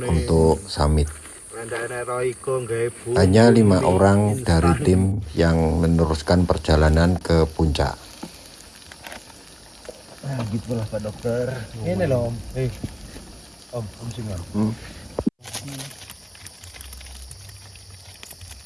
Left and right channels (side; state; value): both; identical; correlation 1.00